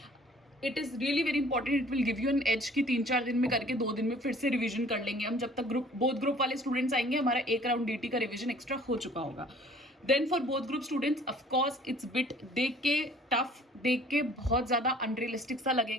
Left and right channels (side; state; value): both; normal; correlation 0.53